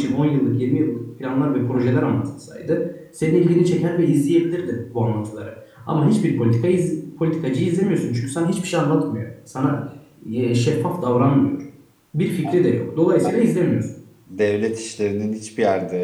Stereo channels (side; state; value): both; identical; correlation 1.00